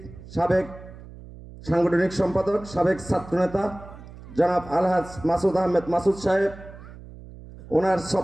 সাবেক সাংগঠনিক সম্পাদক, সাবেক ছাত্রনেতা জনাব আলহাজ মাসুদ আহমেদ মাসুদ সাহেব। ওনার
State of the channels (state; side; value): noise; right; hum, 17 dB below the sound